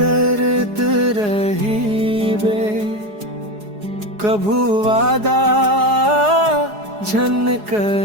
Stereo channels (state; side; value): late; left; 4.8 ms